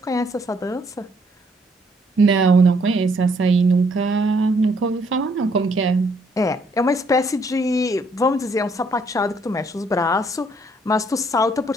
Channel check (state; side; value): normal; both; correlation 0.68